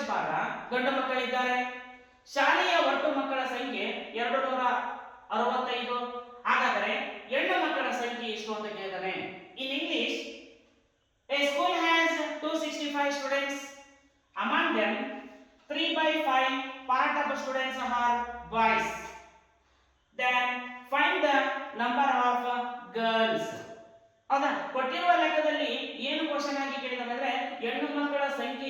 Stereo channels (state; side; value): identical; both; correlation 1.00